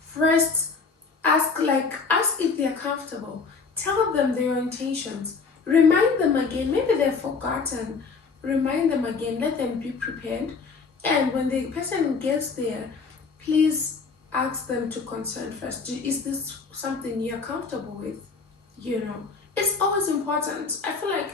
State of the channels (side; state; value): right; quieter; 4.7 dB